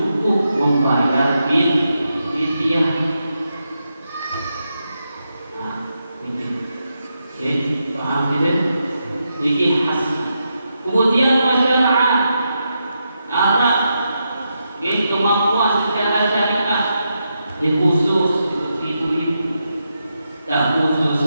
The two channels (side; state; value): both; inverted; correlation -0.85